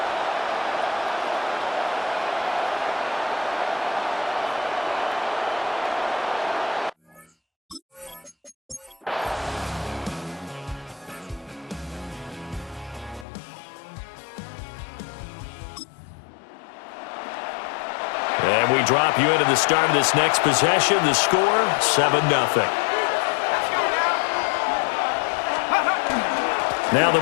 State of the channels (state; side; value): drops out; right; at 13.2 s